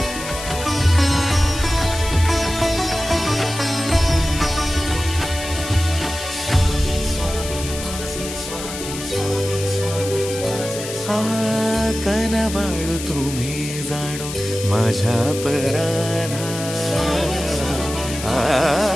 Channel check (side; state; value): left; noise; hiss, 9 dB below the sound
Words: कनवाळू तुम्ही जाणो माझ्या अपराधा,